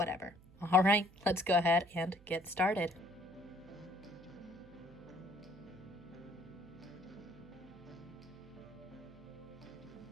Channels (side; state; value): right; noise; hum, 23 dB below the sound